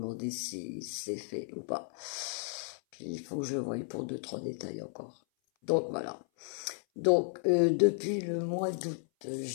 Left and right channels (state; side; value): silent; right; 55 dB below the other